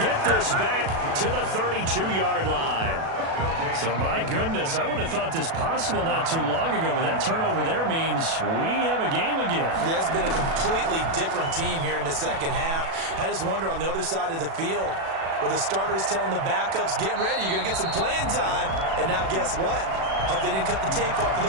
this back to the 32-yard line. So, my goodness, I wouldn't have thought this possible not too long ago, but that turnover there means we have a game again. Yeah, it's been a completely different team here in the second half. I just wonder on the other side of the field, where the starters telling the backups, get ready, you're going to get some playing time. And now guess what? Hope they didn't cut the tape off of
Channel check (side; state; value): left; late; 36 ms